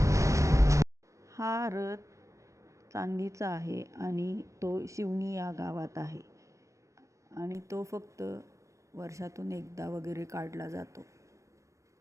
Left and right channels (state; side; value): late; left; 0.15 ms